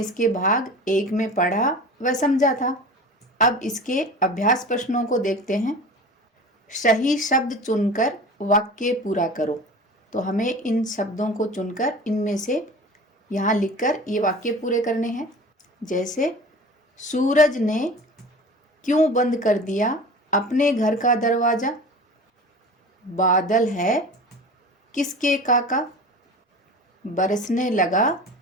भाग 1 में पढ़ा व समझा था। अब इसके अभ्यास प्रश्नों को देखते हैं। सही शब्द चुनकर वाक्य पूरा करो। तो हमें इन शब्दों को चुनकर इनमें से यहाँ लिखकर ये वाक्य पूरे करने हैं। जैसे, सूरज ने क्यों बंद कर दिया अपने घर का दरवाजा? बादल है किसके काका? बरसने लगा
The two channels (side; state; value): both; normal; correlation 0.37